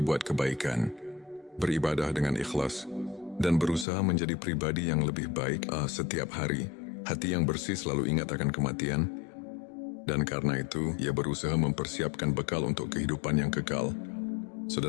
kebaikan, beribadah dengan ikhlas, dan berusaha menjadi pribadi yang lebih baik setiap hari. Hati yang bersih selalu ingat akan kematian, dan karena itu ia berusaha mempersiapkan bekal untuk kehidupan yang kekal.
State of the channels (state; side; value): drops out; right; at 3.9 s